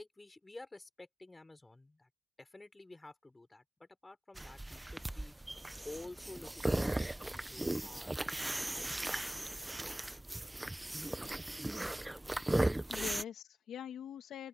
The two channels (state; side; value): normal; both; correlation 0.98